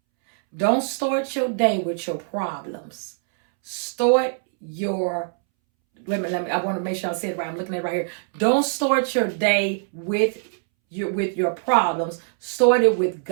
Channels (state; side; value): silent; left; 63 dB below the other